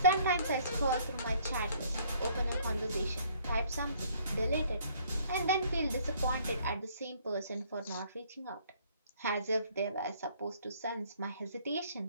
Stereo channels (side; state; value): both; inverted; correlation -0.61